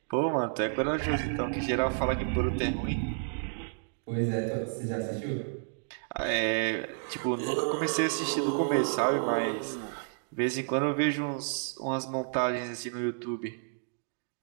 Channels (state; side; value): silent; left; digital silence